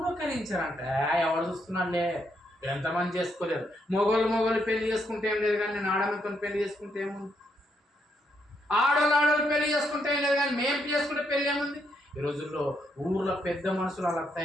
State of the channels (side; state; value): both; normal; correlation 0.77